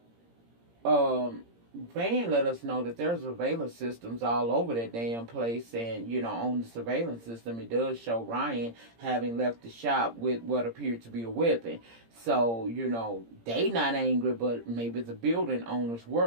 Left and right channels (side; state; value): left; late; 17 ms